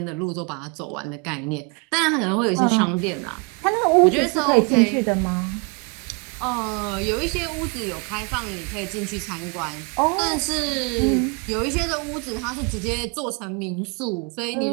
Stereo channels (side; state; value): left; quieter; 32.6 dB